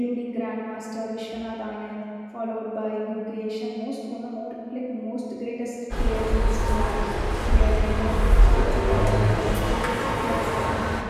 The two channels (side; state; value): both; identical; correlation 1.00